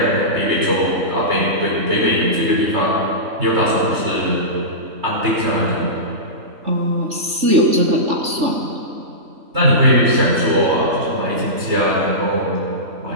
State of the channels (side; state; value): left; late; 3.4 ms